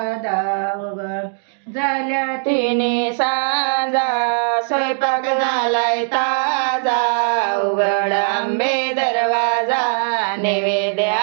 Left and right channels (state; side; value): silent; left; digital silence